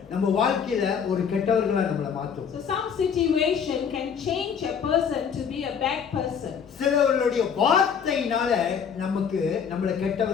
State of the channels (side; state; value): right; quieter; 7.1 dB